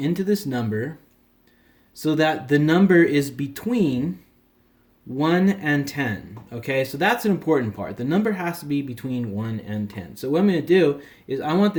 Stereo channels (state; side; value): identical; both; correlation 1.00